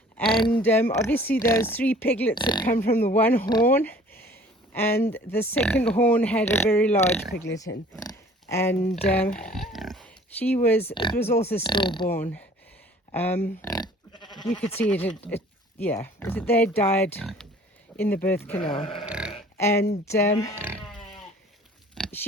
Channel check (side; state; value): both; normal; correlation 0.51